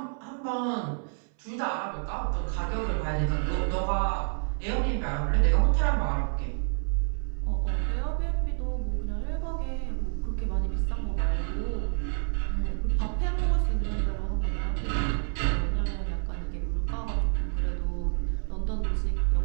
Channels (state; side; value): silent; left; 59 dB below the other